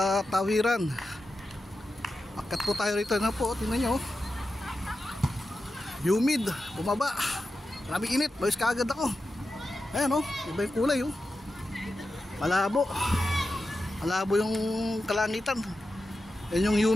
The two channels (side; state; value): both; normal; correlation 0.91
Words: tawiran. Akat po tayo rito na po, tingnan nyo. Humid, bumaba. Maraming init, bayos kaagad ako. Ayan o, iba yung kulay o. Malabo. Malabo yung kalangitan. Yan yung